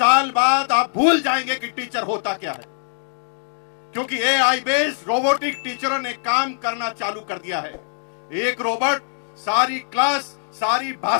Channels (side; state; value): right; silent; digital silence